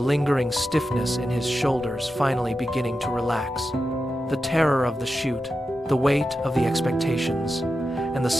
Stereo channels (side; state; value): both; normal; correlation 0.90